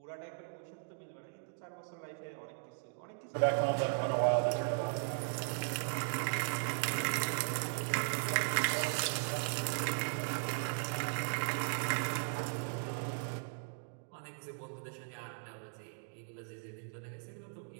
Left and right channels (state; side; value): silent; left; digital silence